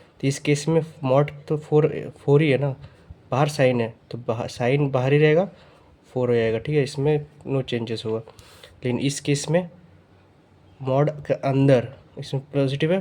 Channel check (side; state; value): both; identical; correlation 1.00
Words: इस केस में मॉड तो 4 ही है ना, बाहर साइन है तो बाहर साइन बाहर ही रहेगा, 4 हो जाएगा। ठीक है, इसमें नो चेंजेस होगा। लेकिन इस केस में मॉड के अंदर इसमें